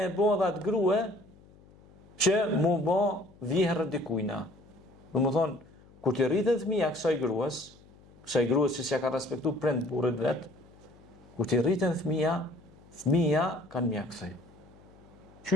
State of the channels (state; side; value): noise; left; hum, 25 dB below the sound